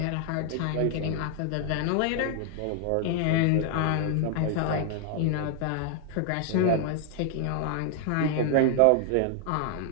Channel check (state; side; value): different; both; correlation 0.00